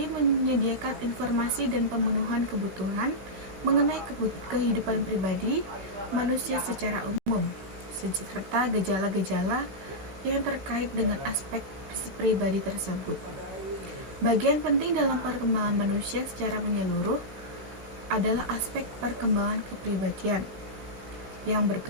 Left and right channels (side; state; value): left; late; 16 ms